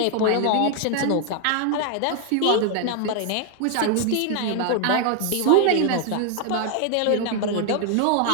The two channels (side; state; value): both; different; correlation 0.00